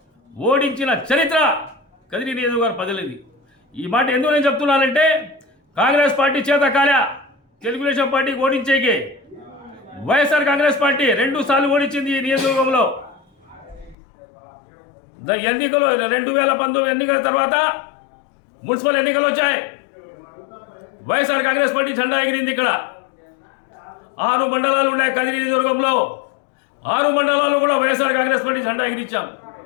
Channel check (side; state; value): right; drops out; at 14.0 s